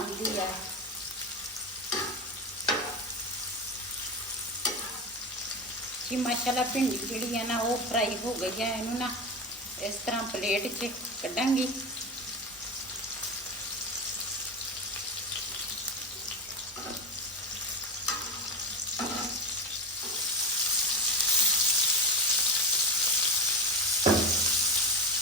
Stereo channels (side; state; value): both; normal; correlation 0.21